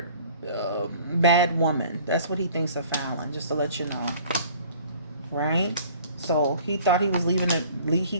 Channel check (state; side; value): inverted; both; correlation -0.51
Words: bad woman. That's what he thinks of Fallon. Just to let you know, right? So he thought he was leaving. He